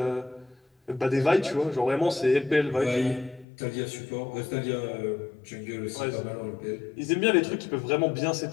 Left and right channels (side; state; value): right; drops out; at 3.5 s